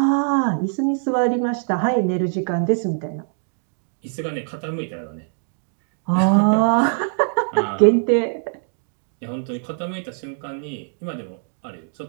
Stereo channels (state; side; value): silent; left; digital silence